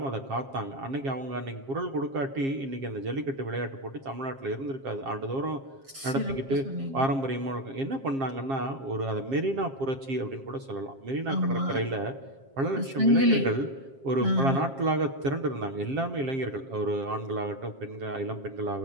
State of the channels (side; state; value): left; late; 7.5 ms